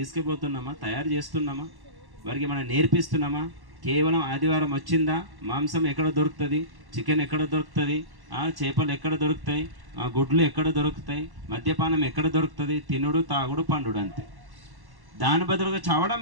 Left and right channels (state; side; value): late; left; 1.1 ms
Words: తయారు చేస్తున్నామా? వారికి మనం నేర్పిస్తున్నామా? కేవలం ఆదివారం వచ్చిందా, మాంసం ఎక్కడ దొరుకుతుంది, చికెన్ ఎక్కడ దొరుకుతుంది, చేపలు ఎక్కడ దొరుకుతాయి, గుడ్లు ఎక్కడ దొరుకుతాయి, మద్యపానం ఎక్కడ దొరుకుతుంది, తినుడు తాగుడు పండుడు అంతే. దాని బదులుగా చావడం